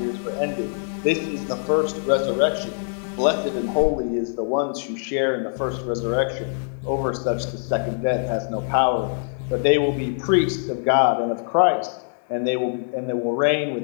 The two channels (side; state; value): right; silent; digital silence